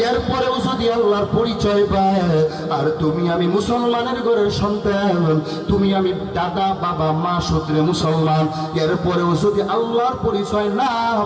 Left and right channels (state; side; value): identical; both; correlation 1.00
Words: এরপরেও যদি আল্লাহর পরিচয় পায়, আর তুমি আমি মুসলমানের ঘরের সন্তান, তুমি আমি দাদা বাবা মা সূত্রে মুসলমান, এরপরেও যদি আল্লাহর পরিচয় না